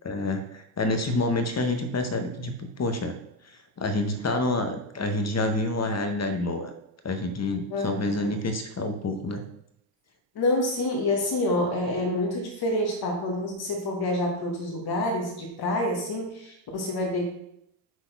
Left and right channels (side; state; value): both; normal; correlation 0.07